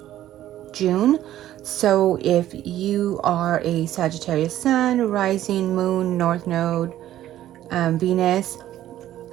June. So if you are a Sagittarius Sun, Rising, Moon, North Node, Venus,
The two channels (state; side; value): quieter; left; 13.0 dB